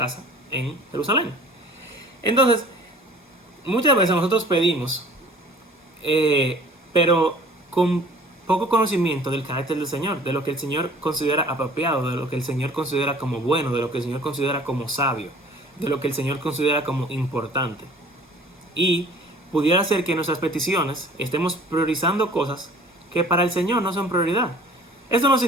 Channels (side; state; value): both; normal; correlation 0.49